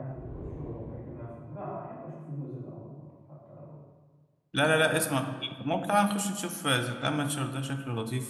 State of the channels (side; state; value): both; identical; correlation 1.00